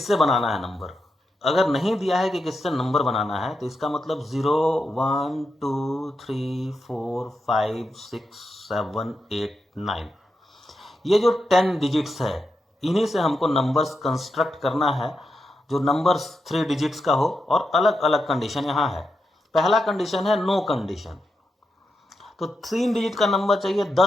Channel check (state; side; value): normal; both; correlation 0.86